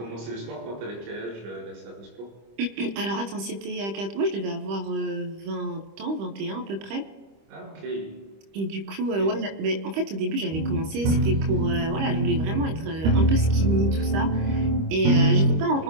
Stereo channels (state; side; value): late; left; 25 ms